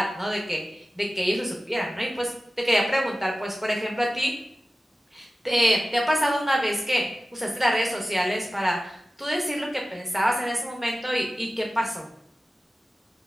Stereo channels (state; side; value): normal; both; correlation 0.95